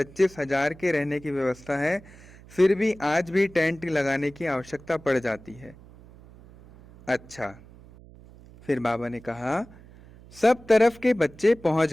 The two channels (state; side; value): noise; right; hum, 22 dB below the sound